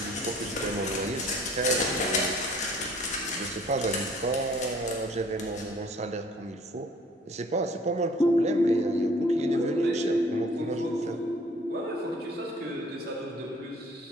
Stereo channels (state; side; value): normal; both; correlation 0.54